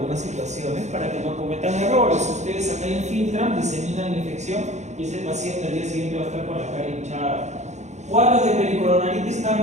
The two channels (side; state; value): left; late; 0.33 ms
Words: situaciones para que no cometan errores. Ustedes acá infiltran, diseminan la infección y ese paciente al día siguiente va a estar con la cara hinchada. Cuadros de pericoronaritis